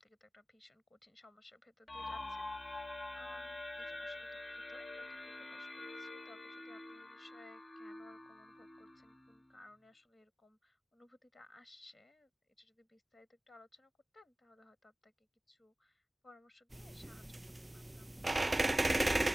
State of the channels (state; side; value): normal; both; correlation 0.97